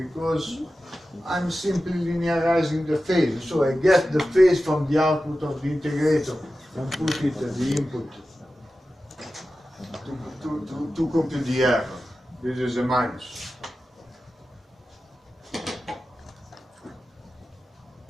I'm simply linearizing the phase. So I get the phase from the output of the integrator and put it at the input to compute the error. This is a minus.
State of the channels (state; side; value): normal; both; correlation 0.93